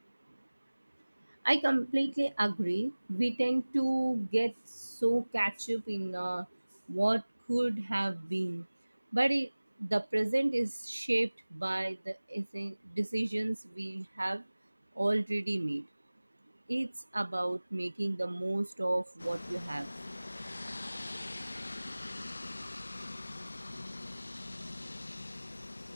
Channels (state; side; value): inverted; both; correlation -1.00